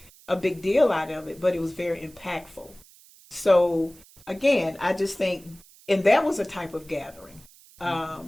a big deal out of it, but it was very impactful. So again, I just think, and that was a type of gathering,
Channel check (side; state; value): right; noise; hiss, 25 dB below the sound